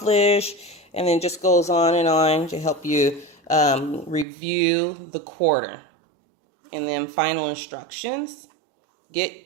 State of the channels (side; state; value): left; drops out; at 4.2 s